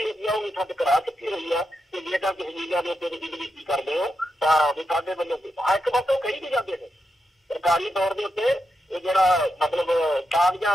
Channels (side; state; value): both; normal; correlation 0.86